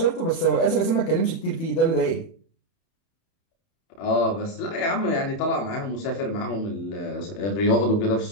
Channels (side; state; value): right; late; 31 ms